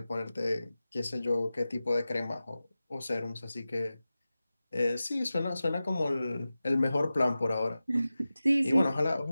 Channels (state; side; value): inverted; both; correlation -0.95